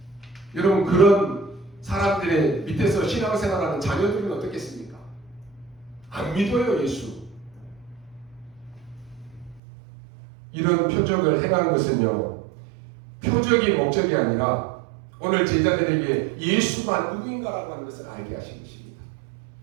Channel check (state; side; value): drops out; left; at 9.6 s